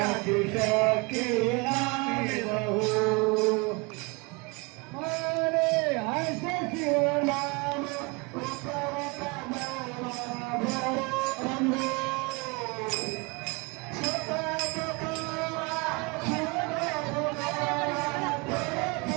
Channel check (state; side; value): quieter; left; 28.5 dB